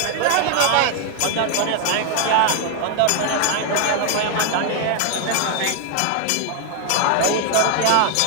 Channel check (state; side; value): different; both; correlation 0.00